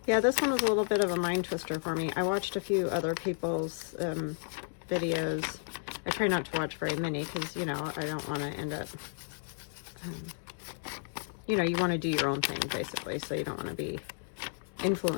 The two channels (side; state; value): right; silent; digital silence